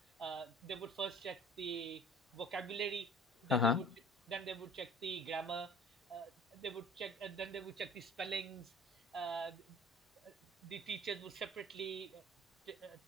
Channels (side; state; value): both; normal; correlation 0.48